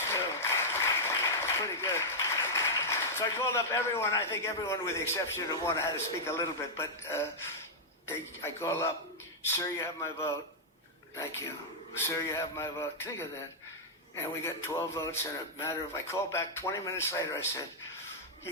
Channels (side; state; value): both; normal; correlation -0.06